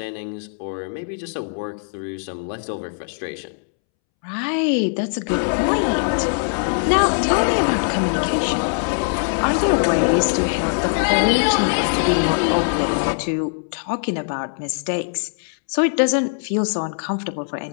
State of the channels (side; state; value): right; silent; 65 dB below the other